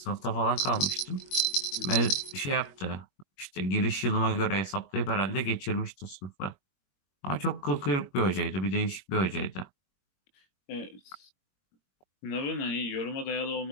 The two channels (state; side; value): late; right; 21 ms